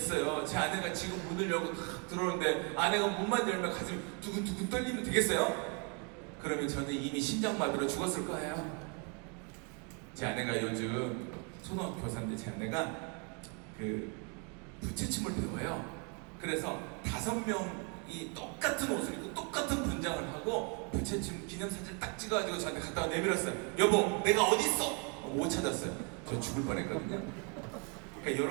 제 아내가 지금 문을 열고 탁 들어오는데 아내가 문만 열면 가슴이 두근두근 떨리면 되겠어요? 그러면 저는 이미 심장마비로 죽었을 거예요. 제 아내가 요즘 초등학교 교사인데 제 아내가 그 부채춤을 배워요. 그래서 5명이 똑같은 옷을 입고 똑같은 분장을 하고 부채춤 기념사진 딱 찍어가지고 저한테 갖다가 내밀었어요. 여보, 내가 어디 있어? 못 찾았어요. 저 죽을 뻔했거든요. 그러니까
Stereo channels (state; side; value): quieter; left; 33.4 dB